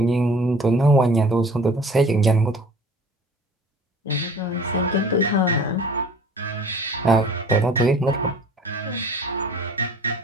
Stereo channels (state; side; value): normal; both; correlation 0.47